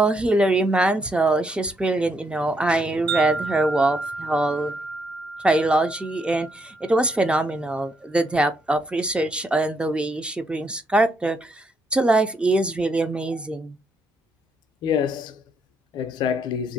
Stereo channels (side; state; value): both; normal; correlation 0.75